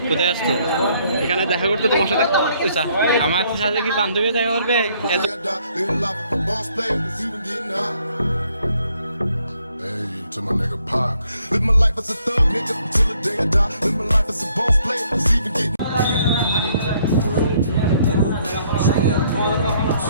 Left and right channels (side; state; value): both; inverted; correlation -0.67